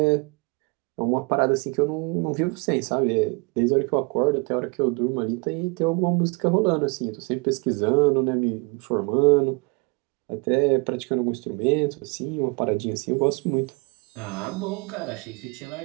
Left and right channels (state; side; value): quieter; left; 30.7 dB